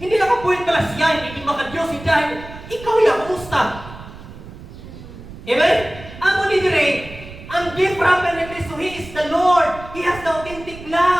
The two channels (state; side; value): noise; right; rumble, 15 dB below the sound